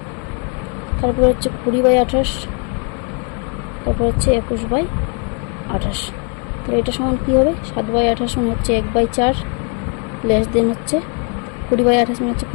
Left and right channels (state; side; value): quieter; right; 38.7 dB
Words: তারপরে হচ্ছে 20/28, তারপর হচ্ছে 21/28। তাহলে এটা সমান কী হবে? 7/28 মানে হচ্ছে 1/4 লেস দেন হচ্ছে 20/28 মানে হচ্ছে